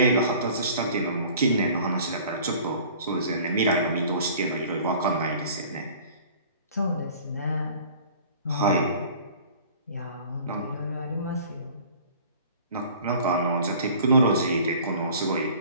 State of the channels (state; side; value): inverted; both; correlation -0.48